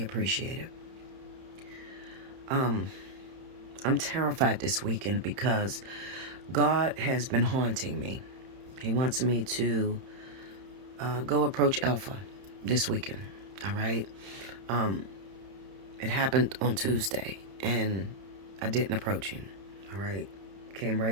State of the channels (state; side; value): late; left; 31 ms